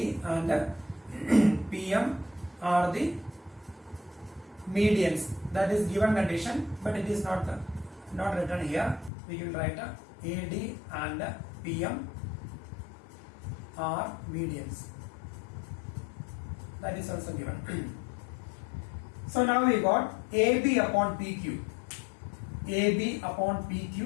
and PM are the medians. That is given condition, but it is not written here. We will write AD and PM are medians. That is also given. So now we got AB upon PQ. AB upon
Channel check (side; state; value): right; drops out; at 9.1 s